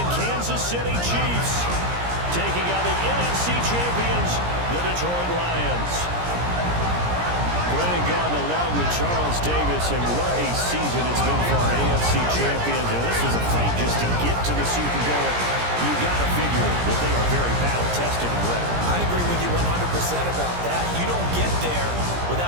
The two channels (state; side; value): late; left; 17 ms